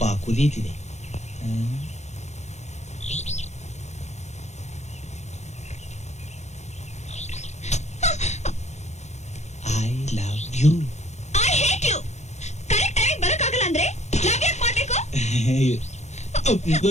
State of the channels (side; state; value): right; late; 0.33 ms